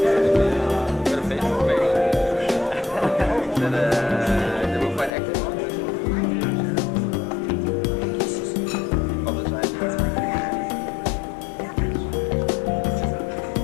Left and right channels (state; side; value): drops out; right; at 5.1 s